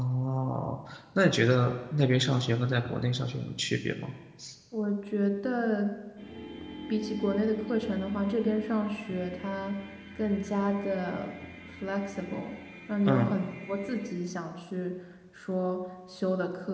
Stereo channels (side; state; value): both; identical; correlation 1.00